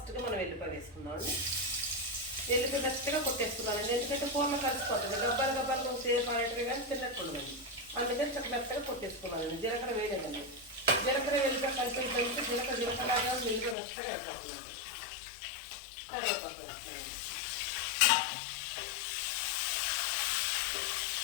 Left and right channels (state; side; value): drops out; right; at 13.8 s